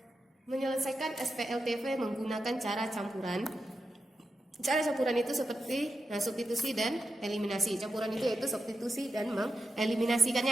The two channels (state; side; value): normal; both; correlation 0.89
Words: menyelesaikan SPLTV menggunakan cara campuran. Cara campuran itu seperti substitusi dan eliminasi. Campuran itu yaitu substitusi dan